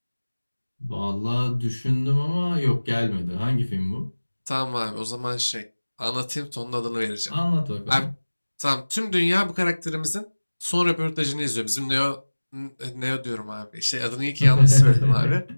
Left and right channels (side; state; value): both; inverted; correlation -1.00